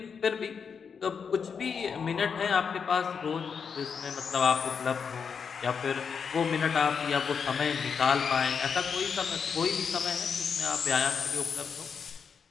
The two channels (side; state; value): right; quieter; 6.3 dB